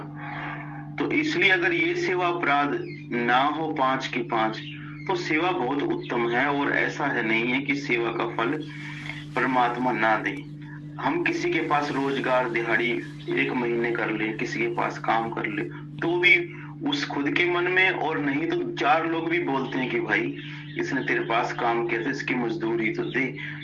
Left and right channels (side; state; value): both; identical; correlation 1.00